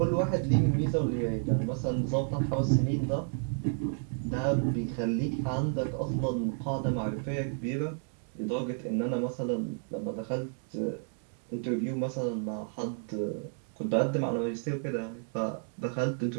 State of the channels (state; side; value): silent; left; 57 dB below the other